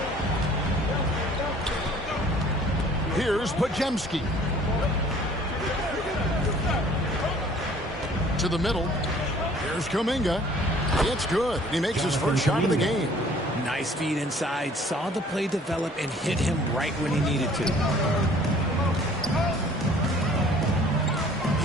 Here's Pajemski. To the middle. Here's Kuminga. It's good. He makes his first shot of the game. Nice feed inside. Saw the play develop and hit him right when he needed to.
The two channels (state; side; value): normal; both; correlation 0.54